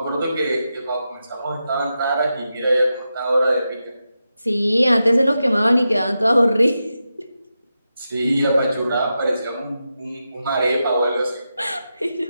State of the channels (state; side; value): inverted; both; correlation -0.89